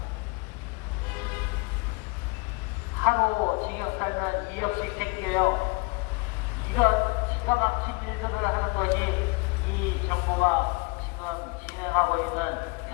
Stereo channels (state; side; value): quieter; right; 28.3 dB